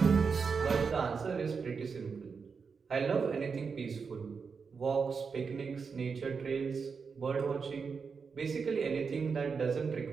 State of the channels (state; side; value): quieter; left; 5.5 dB